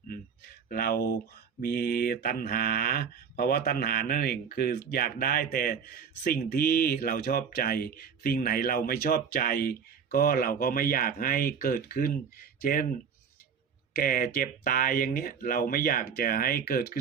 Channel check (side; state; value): left; quieter; 6.7 dB